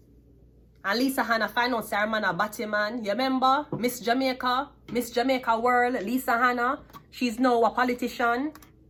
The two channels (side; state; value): both; identical; correlation 1.00